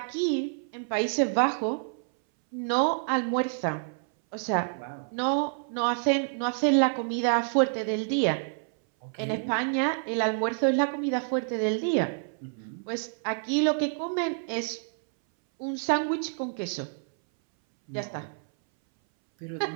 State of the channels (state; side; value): silent; left; 59 dB below the other